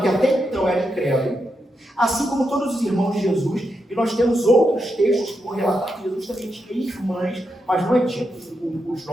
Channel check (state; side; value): normal; both; correlation 0.84